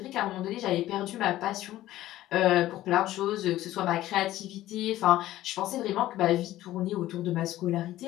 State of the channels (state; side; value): quieter; right; 14.8 dB